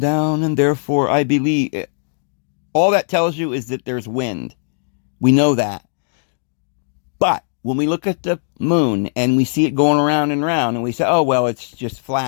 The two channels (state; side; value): silent; right; digital silence